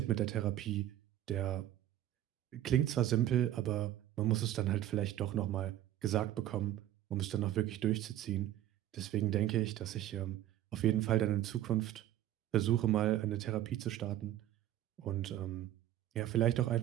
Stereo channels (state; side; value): quieter; left; 12.9 dB